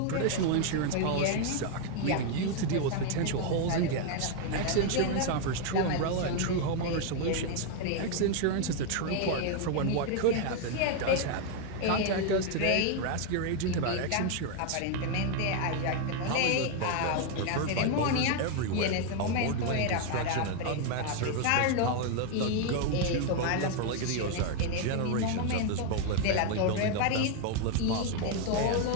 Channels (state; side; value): different; both; correlation 0.01